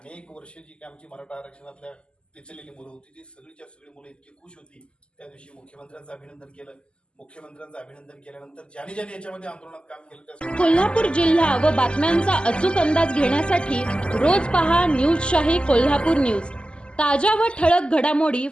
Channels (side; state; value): right; late; 0.051 ms